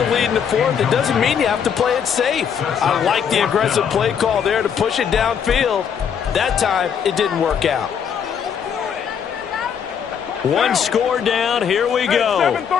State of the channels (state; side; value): quieter; right; 7.6 dB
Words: lead in the fourth, it doesn't mean you have to play it safe. I like the aggressive play call there to push it downfield. That time, it didn't work out. One score down. Here we go.